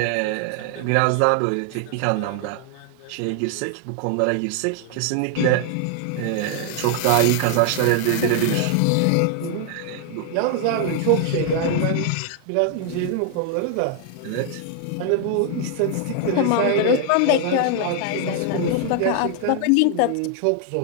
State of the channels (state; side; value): different; both; correlation 0.00